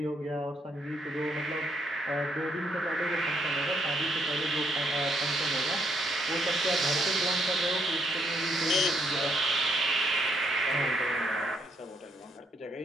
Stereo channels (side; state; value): both; normal; correlation 0.74